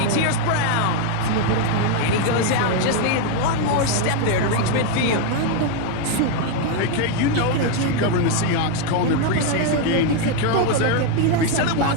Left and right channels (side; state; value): both; different; correlation 0.01